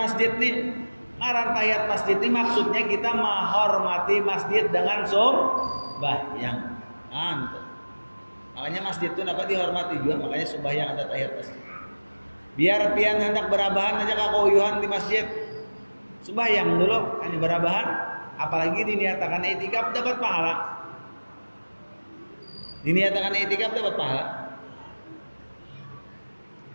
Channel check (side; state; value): both; inverted; correlation -1.00